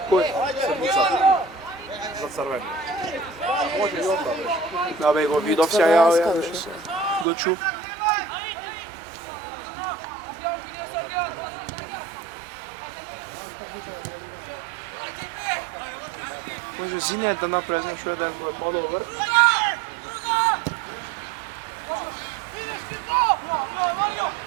Koj? Sedmica. Za crveni. Može i onda, veš. Ja vego vidovся, ja više. Doću. Može Zine da napravi, znaš, jedan modover.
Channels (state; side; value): drops out; left; at 7.2 s